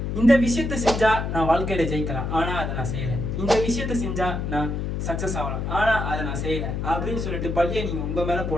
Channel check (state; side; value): noise; left; hum, 2 dB below the sound